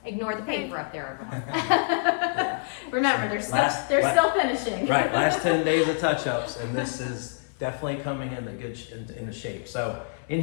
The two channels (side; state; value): right; silent; 61 dB below the other